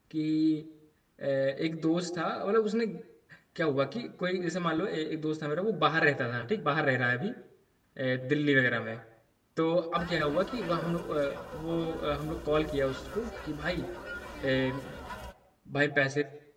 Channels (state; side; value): identical; both; correlation 1.00